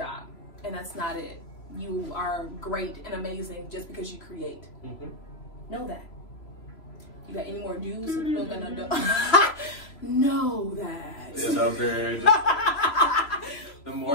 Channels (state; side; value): late; right; 3.0 ms